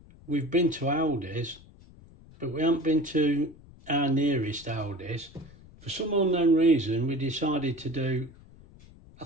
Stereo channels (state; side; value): noise; left; rumble, 22 dB below the sound